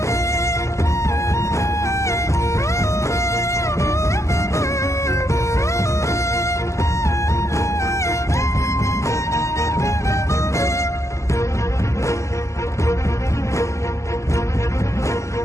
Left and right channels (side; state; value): right; late; 0.14 ms